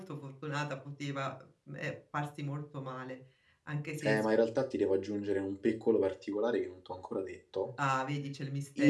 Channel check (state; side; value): identical; both; correlation 1.00